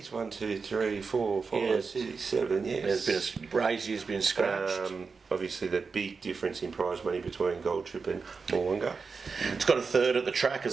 1, 2, 3, 4, 5, 6, 7. Yes. There's been has been scratched. Obviously, the big difference in prize money between Gold Trip and Moolunga. It's got a third at the track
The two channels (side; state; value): left; quieter; 4.9 dB